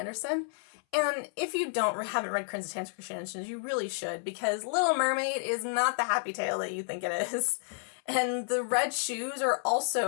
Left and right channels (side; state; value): right; silent; 57 dB below the other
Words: And if you haven't read Hans Christian Andersen, you really should, because Little Mermaid is not the happy tale that you think it is. And The Red Shoes